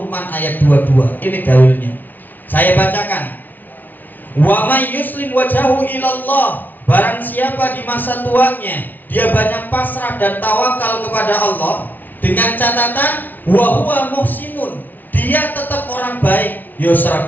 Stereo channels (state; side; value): late; right; 0.084 ms